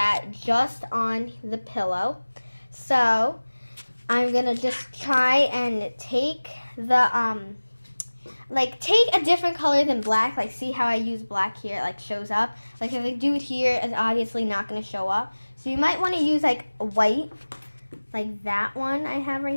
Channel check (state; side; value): inverted; both; correlation -1.00